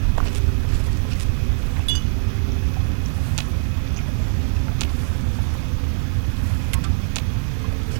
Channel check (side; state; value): left; silent; digital silence